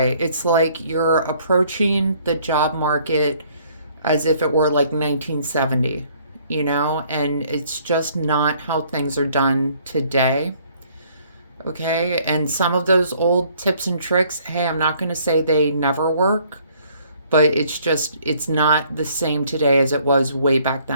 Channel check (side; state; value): both; inverted; correlation -0.61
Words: It's like you're approaching the job market as if it were like 1970, you know, and it's just not how things are done today. Okay. And some of those old tips and tricks, hey, I'm not going to say they never work, but it's just, it's not the same today as it was way back